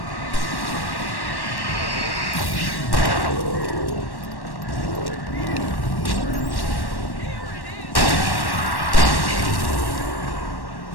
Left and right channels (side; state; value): right; late; 1.1 ms